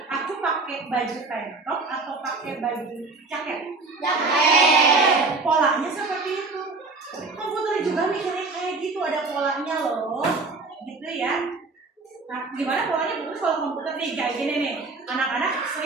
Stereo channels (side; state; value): left; quieter; 3.7 dB